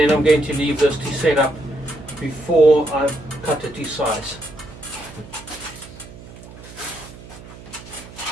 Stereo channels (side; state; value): right; noise; hum, 17 dB below the sound